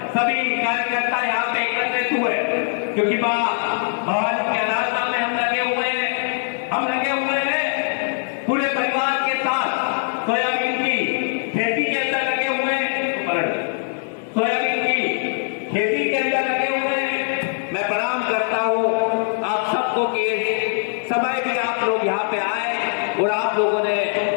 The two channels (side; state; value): right; silent; digital silence